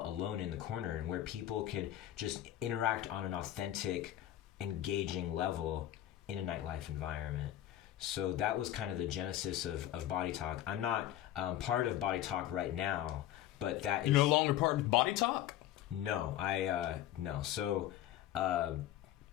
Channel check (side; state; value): right; quieter; 12.9 dB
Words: alone in the corner and where people could just interact on an authentic, engaging level in a nightlife environment. So that was kind of the genesis of Body Talk. I'm not part of Body Talk right now, but that is... You're no longer part of Body Talk? No, no. So,